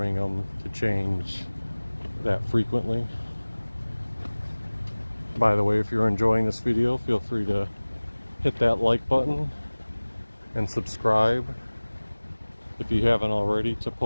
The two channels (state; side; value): inverted; both; correlation -1.00